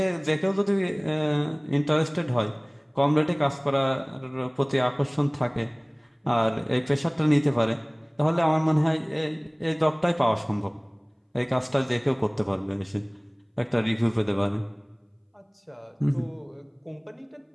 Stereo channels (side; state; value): both; identical; correlation 1.00